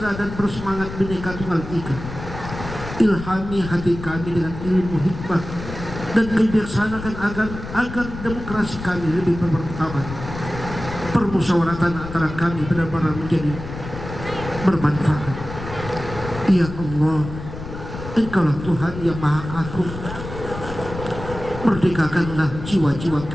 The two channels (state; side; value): noise; left; rumble, 10 dB below the sound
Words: dan bersemangat Bhinneka Tunggal Ika. Ilhami hati kami dengan ilmu hikmah dan kebijaksanaan agar demokrasi kami lebih bermartabat. Permusyawaratan antara kami benar-benar menjadi bermanfaat. Ya Allah, Engkaulah Tuhan yang Maha Agung. Merdekakanlah jiwa-jiwa